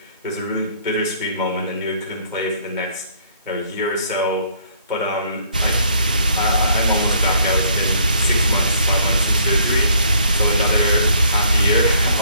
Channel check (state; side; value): inverted; both; correlation -0.63